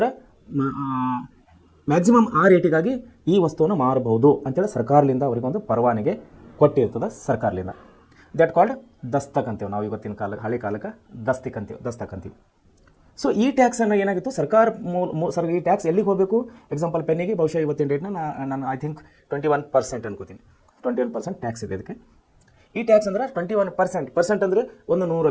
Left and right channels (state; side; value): identical; both; correlation 1.00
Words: ಮ್ಯಾಕ್ಸಿಮಮ್ ಆ ರೇಟಿಗಾಗಿ ಈ ವಸ್ತುವನ್ನು ಮಾರಬಹುದು ಅಂತೇಳಿ ಸರ್ಕಾರದಿಂದ ಅವರಿಗೊಂದು ಪರವಾನಗಿ ಕೊಟ್ಟಿರ್ತದೆ ಸರ್ಕಾರದಿಂದ. ದಟ್ ಕಾಲ್ಡ್ ದಸ್ತಕ್ ಅಂತೀವಿ ನಾವು ಇವತ್ತಿನ ಕಾಲಕ್ಕೆ, ಹಳೆ ಕಾಲಕ್ಕೆ ದಸ್ತಕ್ ಅಂತೀವಿ. ಸೊ ಈ ಟ್ಯಾಕ್ಸನ್ನು ಏನಾಗಿತ್ತು ಸರ್ ಈ ಟ್ಯಾಕ್ಸ್ ಎಲ್ಲಿಗೆ ಹೋಗಬೇಕು? ಎಕ್ಸಾಂಪಲ್ ಪೆನ್ನಿಗೆ ಬಹುಶಃ ಇವತ್ತಿನ ಡೇಟ್ನ ನಾನು ಐ ಥಿಂಕ್ 21% ಅನ್ಕೋತೀನಿ. 21% ಟ್ಯಾಕ್ಸ್ ಇದೆ ಇದಕ್ಕೆ. ಈ ಟ್ಯಾಕ್ಸ್ ಅಂದರೆ 21% ಅಂದರೆ